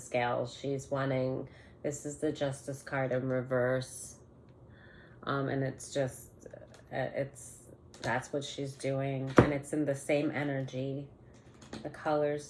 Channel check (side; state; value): both; identical; correlation 1.00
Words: She's wanting, this is the Justice card in reverse. And it's just, that's what she's doing. And it's in the same energy. The colors